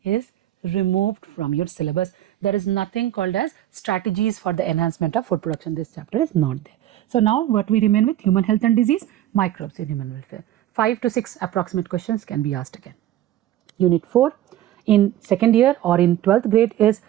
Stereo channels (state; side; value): quieter; left; 12.9 dB